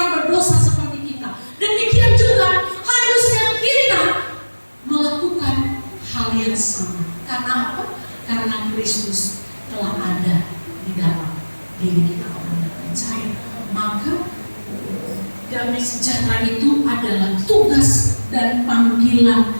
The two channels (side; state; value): both; inverted; correlation -1.00